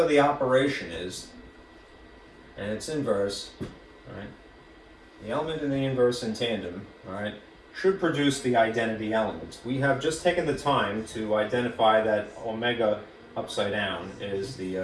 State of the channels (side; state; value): both; identical; correlation 1.00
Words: the operation is, and its inverse, all right? The element and the inverse in tandem, all right, should produce the identity element. We have just taken the time to identify that omega upside down is the